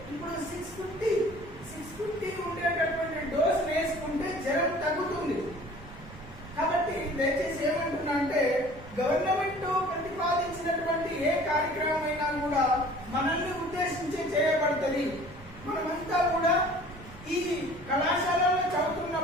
ఇప్పుడు 650 ఉండేటటువంటి డోస్ వేసుకుంటే జ్వరం తగ్గుతుంది. కాబట్టి దయచేసి ఏమంటున్నా అంటే గవర్నమెంట్ ప్రతిపాదించినటువంటి ఏ కార్యక్రమం అయినా కూడా మనల్ని ఉద్దేశించి చేయబడుతుంది. మనమంతా కూడా ఈ కళాశాలలో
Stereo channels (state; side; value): noise; right; rumble, 18 dB below the sound